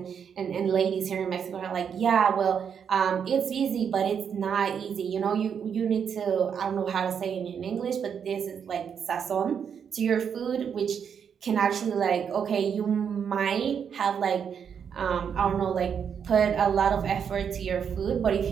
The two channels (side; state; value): left; quieter; 7.4 dB